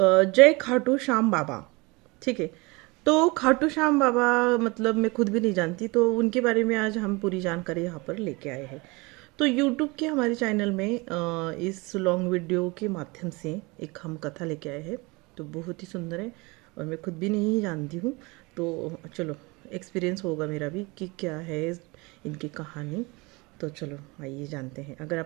खाटू श्याम बाबा। ठीक है। तो खाटू श्याम बाबा मतलब मैं खुद भी नहीं जानती, तो उनके बारे में आज हम पूरी जानकारी यहाँ पर लेके आए हैं। तो यूट्यूब के हमारे चैनल में इस लॉन्ग वीडियो के माध्यम से एक हम कथा लेके आए हैं। तो बहुत ही सुंदर है और मैं खुद भी नहीं जानती हूँ। तो चलो एक्सपीरियंस होगा मेरा भी कि क्या है इनकी कहानी। तो चलो आइए जानते हैं। अगर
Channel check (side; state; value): left; quieter; 25.6 dB